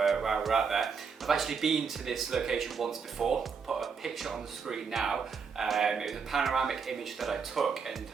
out there. I've actually been to this location once before, put a picture on the screen now. It was a panoramic image that I took and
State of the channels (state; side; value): quieter; left; 5.8 dB